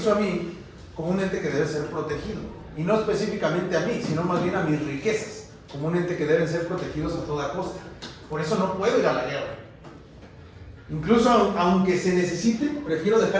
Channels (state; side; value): identical; both; correlation 1.00